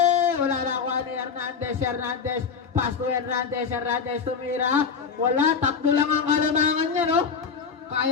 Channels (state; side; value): quieter; right; 6.0 dB